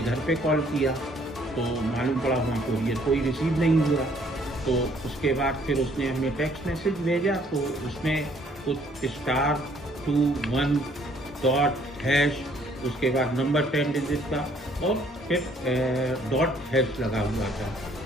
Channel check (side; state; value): both; normal; correlation 0.63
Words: घर पे कॉल किया तो मालूम पड़ा वहाँ कोरियर कोई रिसीव नहीं हुआ। तो उसके बाद फिर उसने हमें टेक्स्ट मैसेज भेजा, तो उसमें कुछ *21 उसके बाद नंबर 10 डिजिट का और फिर डॉट # लगा हुआ था।